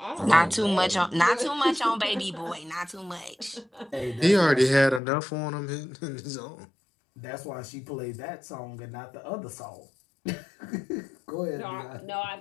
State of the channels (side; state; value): right; drops out; at 5.0 s